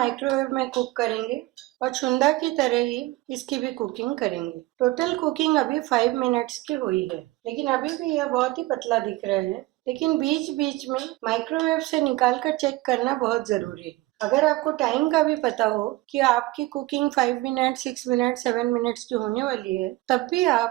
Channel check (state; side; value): quieter; left; 19.1 dB